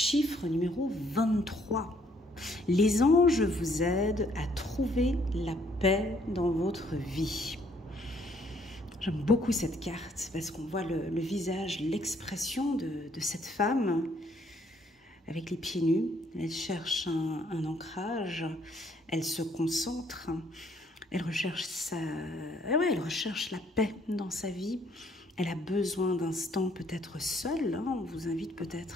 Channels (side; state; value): both; normal; correlation 0.66